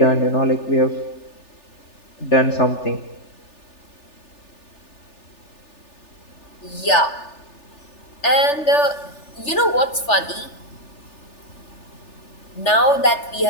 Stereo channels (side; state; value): right; late; 3.4 ms